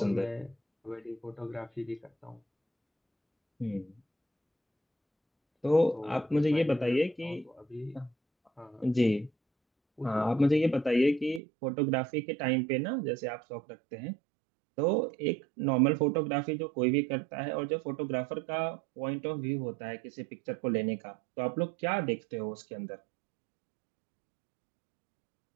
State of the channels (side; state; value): left; drops out; at 11.4 s